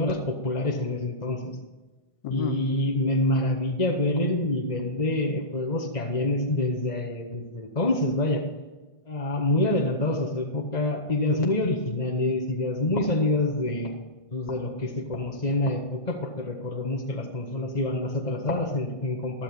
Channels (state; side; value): late; right; 1.5 ms